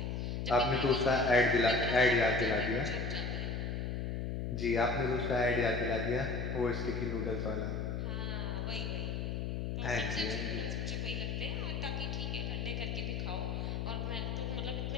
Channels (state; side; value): noise; left; hum, 2 dB below the sound